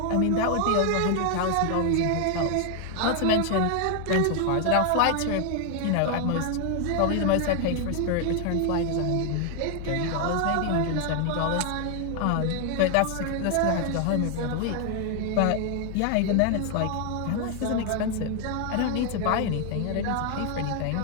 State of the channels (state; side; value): different; both; correlation 0.00